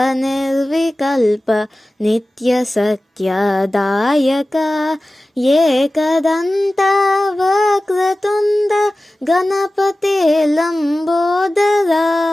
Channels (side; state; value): both; normal; correlation 0.96